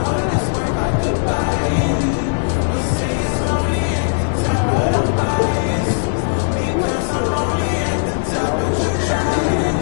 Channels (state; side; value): silent; right; digital silence